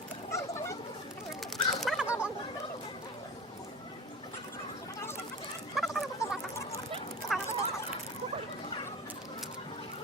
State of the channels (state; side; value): normal; both; correlation 0.34